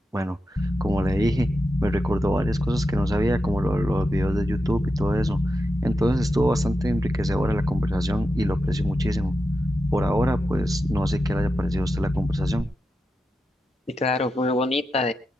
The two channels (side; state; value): both; normal; correlation 0.89